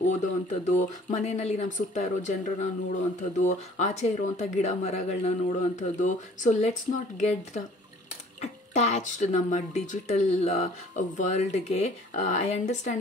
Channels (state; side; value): normal; both; correlation 0.53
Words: ಓದೋ ಅಂಥದ್ದು, ಮನೆಯಲ್ಲಿ ನಮ್ಮ ಸುತ್ತ ಇರೋ ಜನರನ್ನ ನೋಡೋ ಅಂಥದ್ದು, ಆಚೆ ಇರೋವಂಥ ಗಿಡ ಮರಗಳನ್ನ ನೋಡೋ ಅಂಥದ್ದು. So let's not get attached ನಮ್ಮ ಡಿಜಿಟಲ್ ವರ್ಲ್ಡ್ಗೆ. ಐ